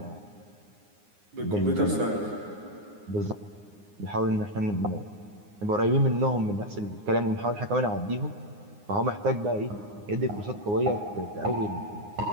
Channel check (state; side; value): late; left; 9.7 ms